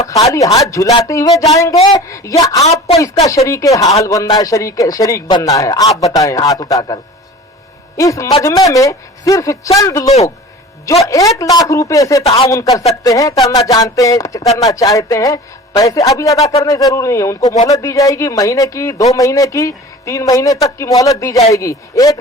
खाली हाथ झुलाते हुए जाएंगे या आपको इसका शरीक हाल बनना है, शरीक बनना है? आप बताएं हाथ उठाकर। इस मजमे में सिर्फ चंद लोग जो 1 लाख रुपए से ताउन कर सकते हैं, करना जानते हैं, करना चाहते हैं, पैसे अभी अदा करने जरूरी नहीं है, उनको मोहलत दी जाएगी, महीने की, 2 महीने की, 3 महीने तक की मोहलत दी जाएगी। 1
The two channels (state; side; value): normal; both; correlation 0.40